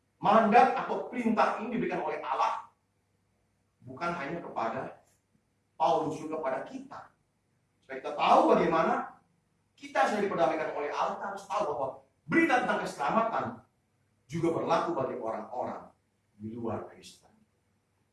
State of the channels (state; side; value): identical; both; correlation 1.00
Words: Mandat atau perintah ini diberikan oleh Allah, bukan hanya kepada Paulus, juga kepada kita. Supaya kita tahu bagaimana kita sudah diperdamaikan oleh Allah. Kita harus tahu bahwa berita tentang keselamatan juga berlaku bagi orang-orang di luar Kristen.